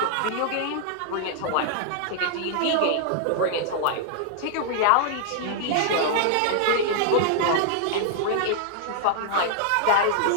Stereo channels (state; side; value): different; both; correlation -0.01